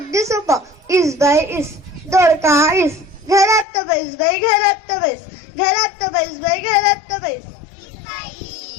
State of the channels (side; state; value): right; drops out; at 3.7 s